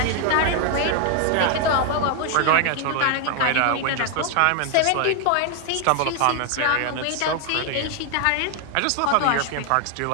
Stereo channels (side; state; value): both; different; correlation 0.00